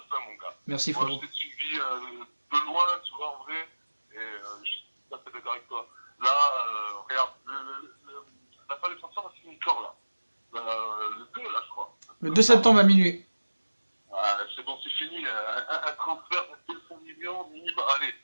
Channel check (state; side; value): inverted; both; correlation -1.00